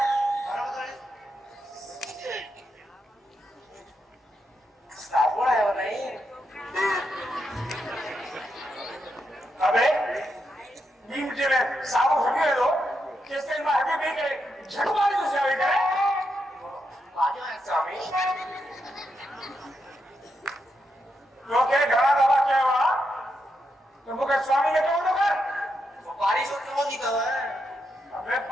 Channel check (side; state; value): both; normal; correlation 0.83